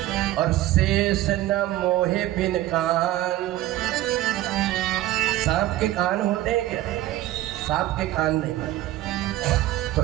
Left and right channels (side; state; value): left; quieter; 15.1 dB